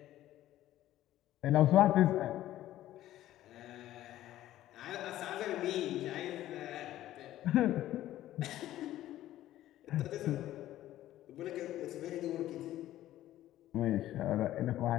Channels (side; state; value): right; quieter; 13.8 dB